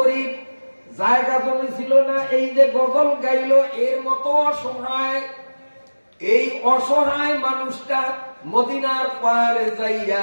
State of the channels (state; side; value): inverted; both; correlation -1.00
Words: জায়গা জমি ছিল না, এই যে গজল গাইল এর মতো অসহায়, এই অসহায় মানুষটা মদিনার পাহাড়ে যাইয়া